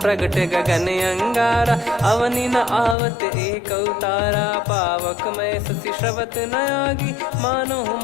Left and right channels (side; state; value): right; drops out; at 3.0 s